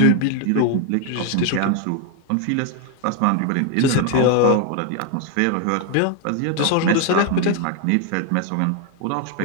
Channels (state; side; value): different; both; correlation 0.01